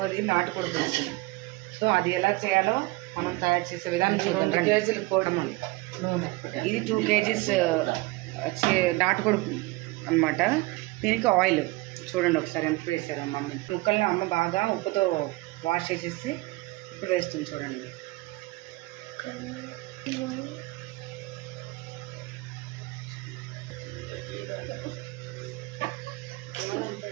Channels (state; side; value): quieter; left; 22.3 dB